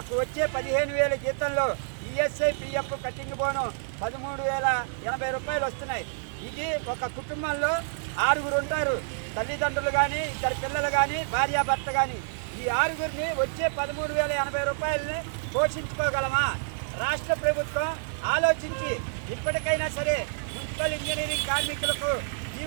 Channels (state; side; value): silent; left; digital silence